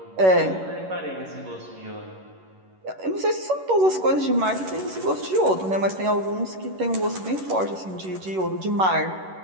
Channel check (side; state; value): left; late; 11 ms